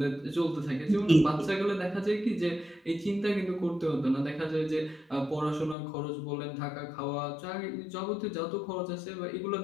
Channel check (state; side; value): drops out; right; at 5.8 s